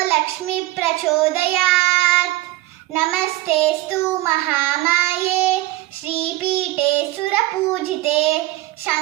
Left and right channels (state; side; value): quieter; left; 17.5 dB